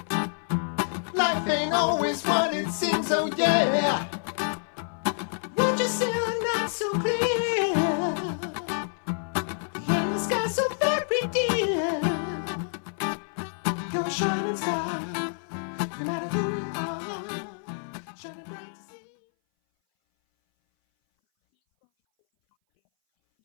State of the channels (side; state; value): right; silent; 58 dB below the other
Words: life ain't always what it seems, oh yeah. Won't you see the night so clear, and the sky so very dear? You're a shining star, no matter who you are, shining bright to see. All right, great job, Dharma School students.